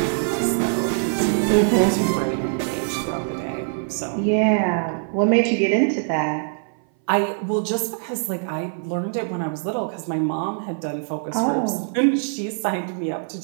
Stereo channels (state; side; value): silent; left; 58 dB below the other